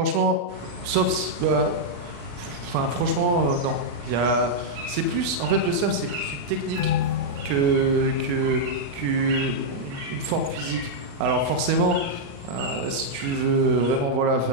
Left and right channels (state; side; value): late; left; 35 ms